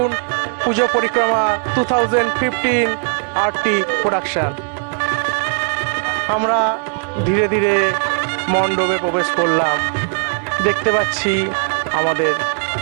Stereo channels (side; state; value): left; silent; 67 dB below the other